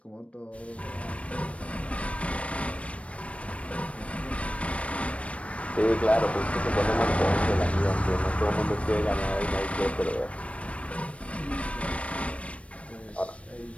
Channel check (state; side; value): late; right; 0.063 ms